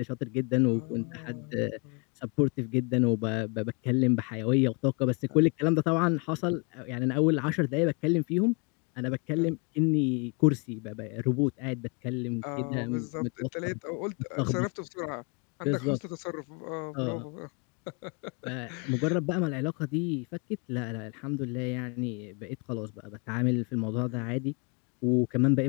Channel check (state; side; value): quieter; right; 33.1 dB